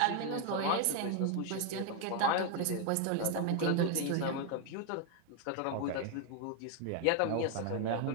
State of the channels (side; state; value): both; different; correlation 0.01